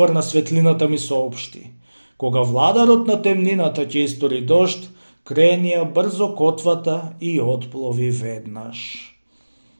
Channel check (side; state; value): both; inverted; correlation -1.00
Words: на светлината, ми соопшти: кога владарот на темнината ќе истори дожд, кренија брзо котвата и отплови веднаш.